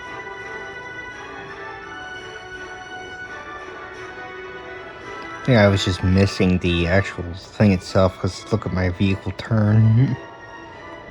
I think I was just missing the actual thing itself, because look at my vehicle turn.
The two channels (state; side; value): identical; both; correlation 1.00